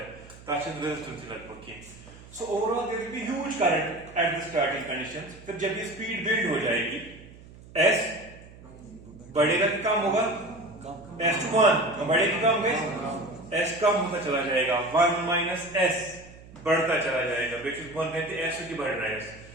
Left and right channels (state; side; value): noise; right; hum, 20 dB below the sound